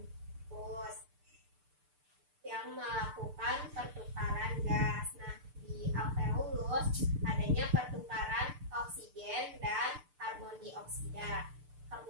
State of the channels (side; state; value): left; late; 6.8 ms